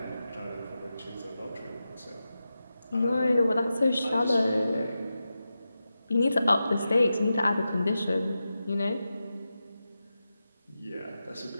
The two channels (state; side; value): inverted; both; correlation -0.91